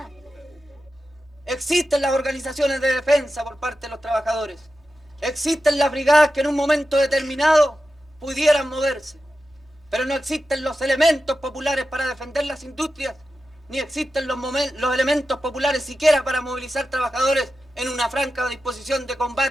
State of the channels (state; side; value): normal; both; correlation 0.92